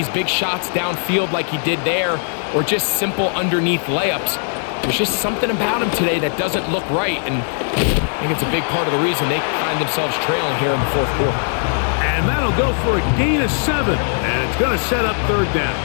big shots downfield like he did there or just simple underneath layups, there's just something about him today that doesn't look right. And I think it's a big part of the reason they find themselves trailing here in the 4th quarter. And that'll go for a gain of 7. And it's going to set up 3rd down.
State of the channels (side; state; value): right; silent; 62 dB below the other